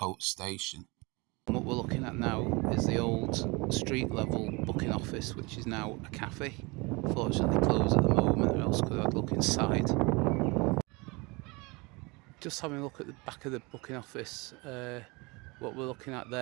Station. What we're looking at now is the old street level booking office, which is now a cafe. Fortunately closed at the moment, or else could I'd look inside. Just having a look at the back of the booking office, what we're looking at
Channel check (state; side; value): quieter; left; 26.5 dB